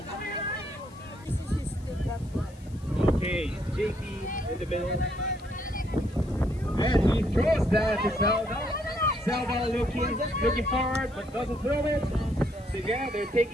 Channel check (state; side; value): noise; left; hiss, 27 dB below the sound